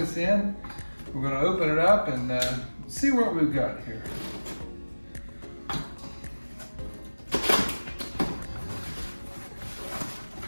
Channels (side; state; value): both; inverted; correlation -1.00